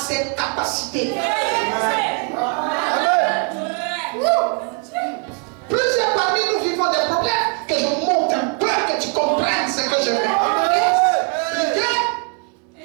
capacités. Plusieurs parmi nous vivons des problèmes. Que je monte un peu, que tu comprennes ce que je veux.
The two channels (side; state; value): left; quieter; 36.0 dB